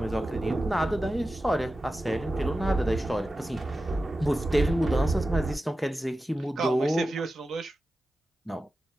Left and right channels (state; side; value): normal; both; correlation 0.93